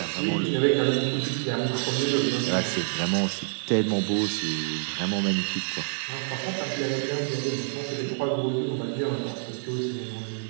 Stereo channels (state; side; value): silent; left; digital silence